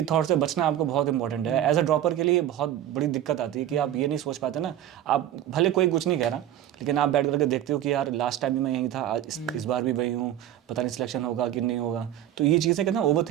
थॉट से बचना आपको बहुत इंपॉर्टेंट है। एज अ ड्रॉपर के लिए बहुत बड़ी दिक्कत आती है कि आप ये नहीं सोच पाते ना, आप भले कोई कुछ नहीं कह रहा, लेकिन आप बैठ करके देखते हो कि यार लास्ट टाइम भी मैं यहीं था, आज इस बार भी वही हूँ, पता नहीं सिलेक्शन होगा कि नहीं होगा। तो ये चीज़ें कहते हैं ओवर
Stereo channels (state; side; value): quieter; left; 11.9 dB